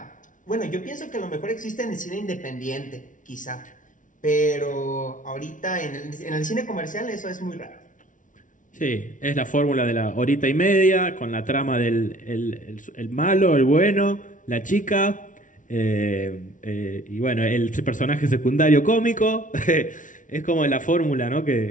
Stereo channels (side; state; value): right; late; 0.37 ms